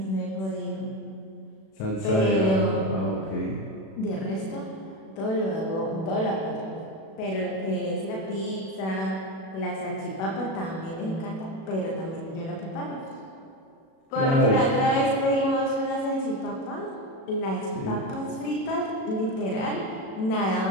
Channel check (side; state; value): right; late; 37 ms